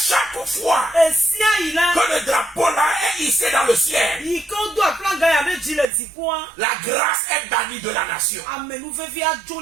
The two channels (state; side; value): drops out; left; at 5.9 s